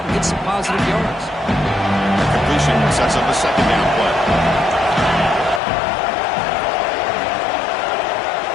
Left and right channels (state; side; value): drops out; right; at 5.6 s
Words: and gets some positive yards. The completion sets up a second down play.